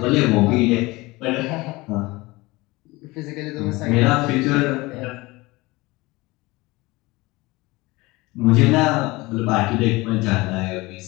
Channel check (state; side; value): quieter; right; 21.9 dB